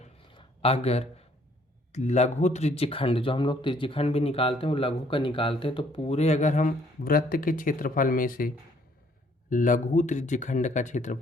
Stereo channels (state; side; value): normal; both; correlation 0.63